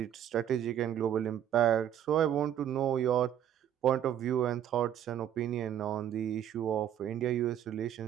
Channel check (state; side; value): quieter; left; 10.2 dB